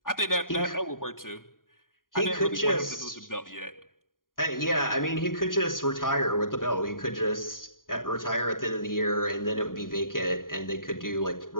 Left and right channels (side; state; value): right; late; 0.90 ms